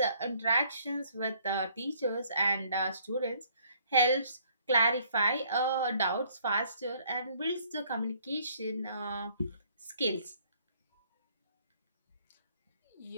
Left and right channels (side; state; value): both; inverted; correlation -0.63